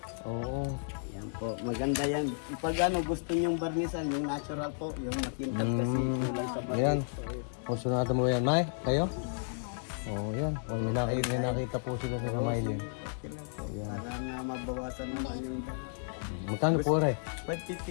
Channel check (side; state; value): right; silent; digital silence